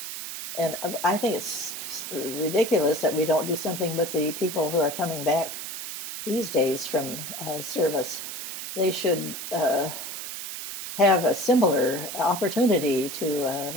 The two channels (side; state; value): right; noise; hiss, 7 dB below the sound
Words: And I think it's ridiculous that we don't do something with the people who are coming back these days from service. They should have a similar opportunity